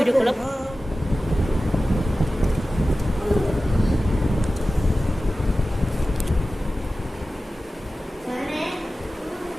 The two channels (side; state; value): both; normal; correlation 0.95